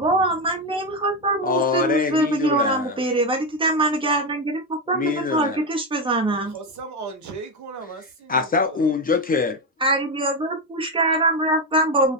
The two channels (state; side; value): normal; both; correlation 0.10